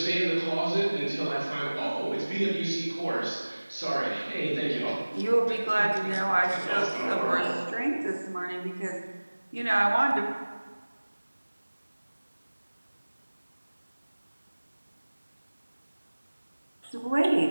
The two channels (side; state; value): both; inverted; correlation -1.00